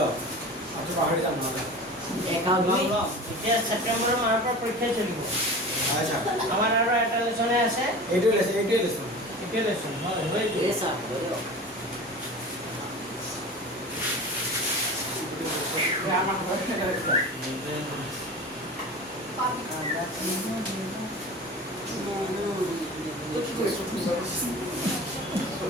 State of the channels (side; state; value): both; normal; correlation 0.35